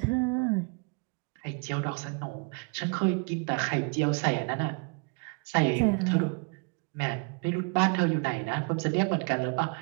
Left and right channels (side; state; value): left; quieter; 34.5 dB